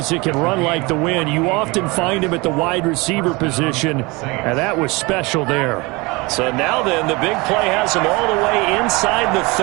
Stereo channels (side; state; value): left; quieter; 25.0 dB